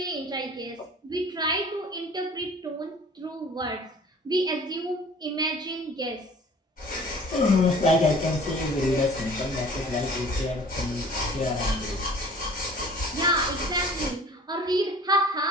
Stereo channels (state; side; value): normal; both; correlation 0.48